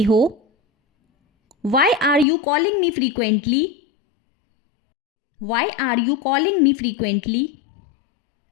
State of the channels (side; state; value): right; drops out; at 2.2 s